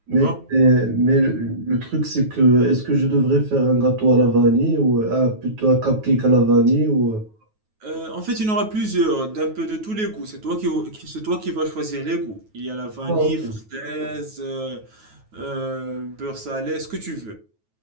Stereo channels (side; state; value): left; late; 9.3 ms